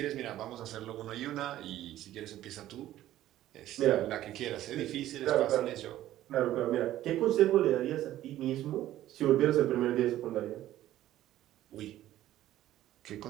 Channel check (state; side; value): quieter; left; 13.7 dB